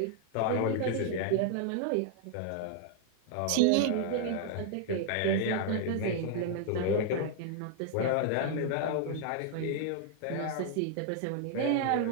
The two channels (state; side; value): different; both; correlation 0.00